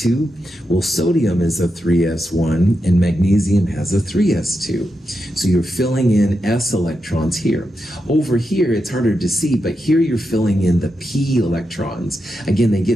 Well, sodium is a 3s1 and magnesium has a 3s2. So you're filling in s electrons here. Over here, it's harder to see, but here you're filling in the p electrons. Again, they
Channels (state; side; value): normal; both; correlation 0.87